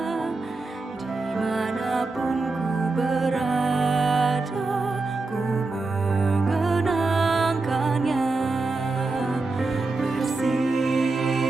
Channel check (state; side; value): quieter; left; 3.5 dB